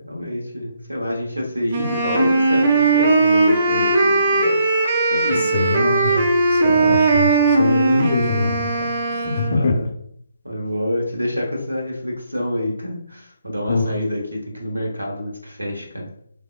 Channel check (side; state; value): both; inverted; correlation -0.73